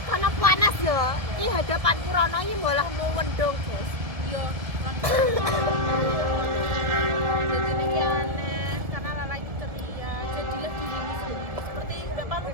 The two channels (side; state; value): left; late; 1.7 ms